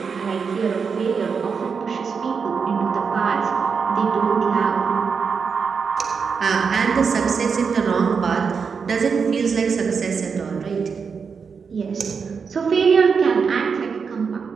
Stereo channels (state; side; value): quieter; left; 5.8 dB